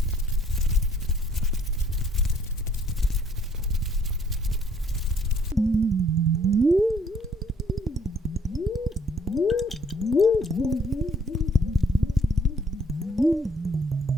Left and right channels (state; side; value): normal; both; correlation 0.63